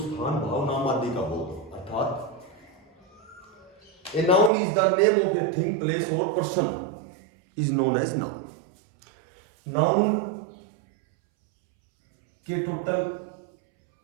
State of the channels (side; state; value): left; drops out; at 4.5 s